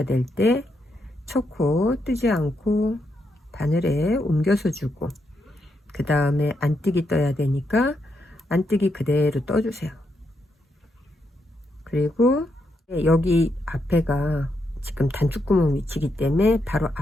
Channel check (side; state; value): both; normal; correlation 0.81